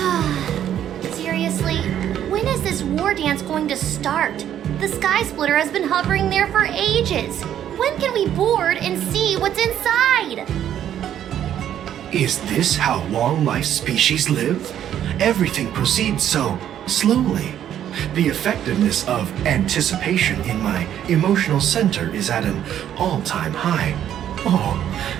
Seriously, when is this war dance going to start? The Sky Splitter has been hovering there for ages. When can we board and see what's inside? Is this how long-life species live? Everything proceeds so slowly. The effectiveness of anticipation in my emotional center is at an all-time high. Oh,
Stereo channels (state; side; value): quieter; left; 10.5 dB